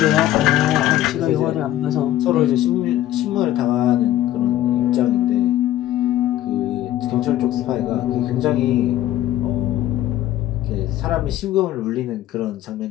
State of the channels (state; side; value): quieter; right; 13.3 dB